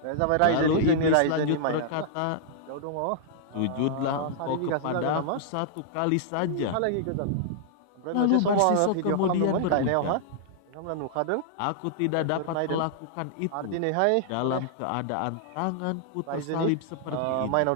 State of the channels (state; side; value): different; both; correlation -0.01